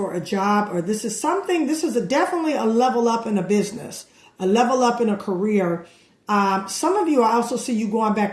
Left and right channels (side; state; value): both; identical; correlation 1.00